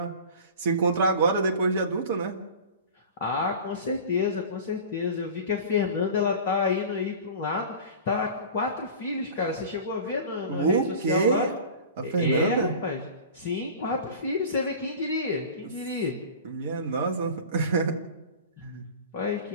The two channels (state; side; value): inverted; both; correlation -0.37